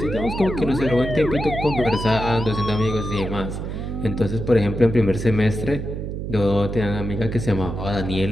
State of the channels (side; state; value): right; noise; hum, 5 dB below the sound